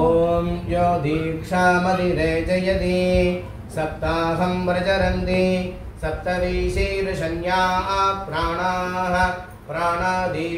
யோ தீக்ஷாமதிரே ஜயதி சப்தாஹம் பிரஜரந்தி சப்தவீசீர்ஷன்யா பிராணாः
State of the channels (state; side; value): identical; both; correlation 1.00